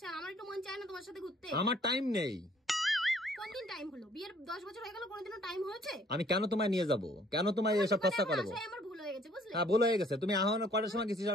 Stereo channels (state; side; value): normal; both; correlation 0.60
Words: আমার একটু মন চায় না তোমার সাথে ঘুরতে আমার টাইম নেই কোন দিন টাইম হলো বিয়ের 10 বছর হয়ে গেল কোনদিনও টাইম হয়েছে আমি কেন তোমায় নিয়ে যাব কেন তোমায় এসব খরচা করবো আমার ভুল হয়ে গেছে বুঝলে হ্যাঁ ভুল হয়ে গেছে তুমি এখন কটার সময় গেছিস